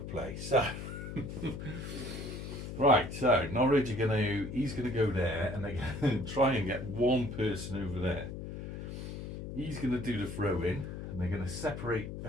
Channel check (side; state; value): left; noise; hum, 8 dB below the sound